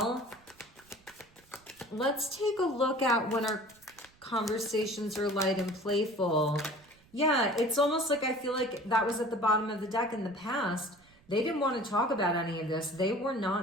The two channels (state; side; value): noise; right; rumble, 29 dB below the sound